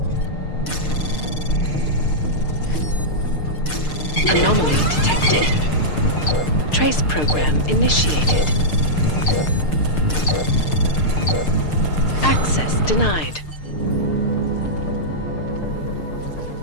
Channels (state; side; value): late; right; 6.6 ms